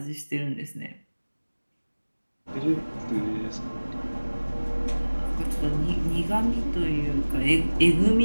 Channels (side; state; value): both; inverted; correlation -1.00